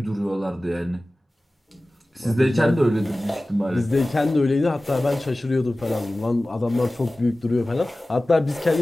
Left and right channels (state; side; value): normal; both; correlation 0.97